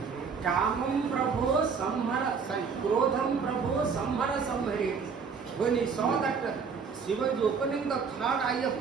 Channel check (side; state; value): left; quieter; 5.7 dB